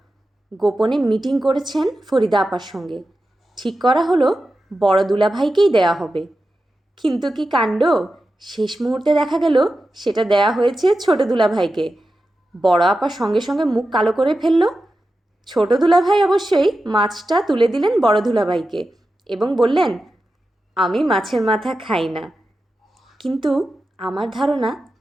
গোপনে মিটিং করেছেন ফরিদা আপার সঙ্গে। ঠিক করা হলো বড় দুলাভাইকেই দেয়া হবে। কিন্তু কি কাণ্ড! শেষ মুহূর্তে দেখা গেল সেটা দেয়া হয়েছে ছোট দুলাভাইকে। বড় আপা সঙ্গে সঙ্গে মুখ কালো করে ফেলল। ছোট দুলাভাই অবশ্যই মাছটা তুলে দিলেন বড় দুলাভাইকে এবং বললেন, আমি মাছের মাথা খাই না। কিন্তু আমার ধারণা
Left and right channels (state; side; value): normal; both; correlation 0.92